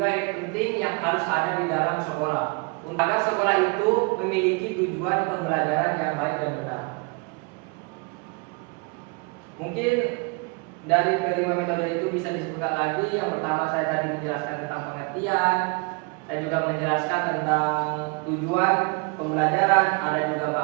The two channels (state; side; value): quieter; left; 31.1 dB